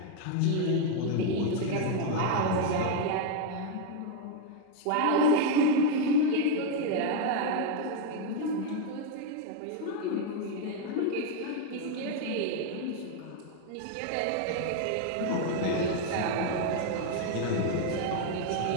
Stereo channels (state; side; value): different; both; correlation 0.01